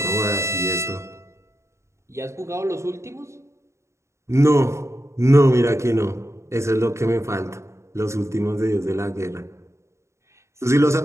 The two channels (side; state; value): left; late; 0.14 ms